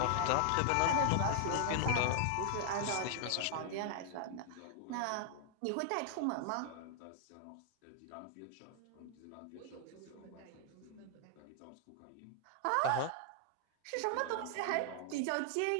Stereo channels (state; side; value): different; both; correlation 0.00